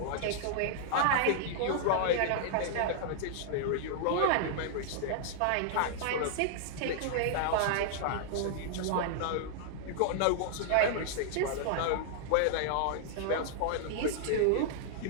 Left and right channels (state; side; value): different; both; correlation -0.01